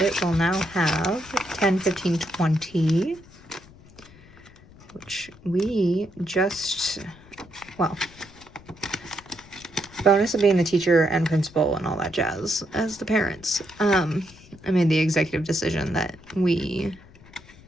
will now have 10, 15, 20, which we just, well, bonus of being the teacher and principal and all that jazz as the parents. I made the executive decision that we're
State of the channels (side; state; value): left; noise; rumble, 23 dB below the sound